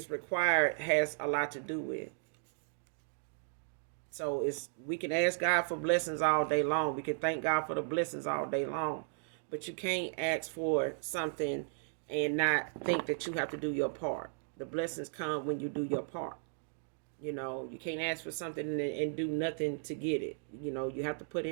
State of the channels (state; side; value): silent; left; digital silence